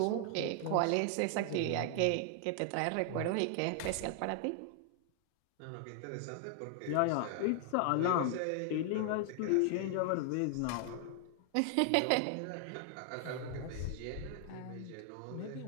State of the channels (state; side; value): different; both; correlation 0.00